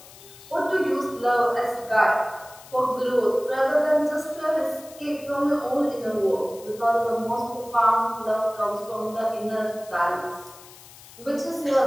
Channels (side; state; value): left; noise; hiss, 20 dB below the sound